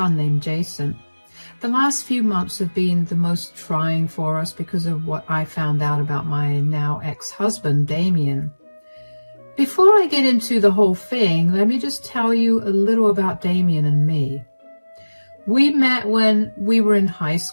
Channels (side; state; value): both; inverted; correlation -1.00